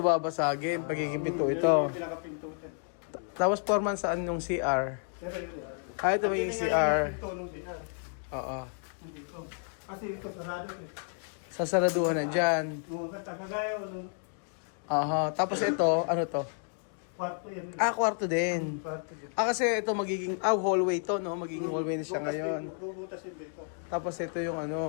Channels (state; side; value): silent; right; 57 dB below the other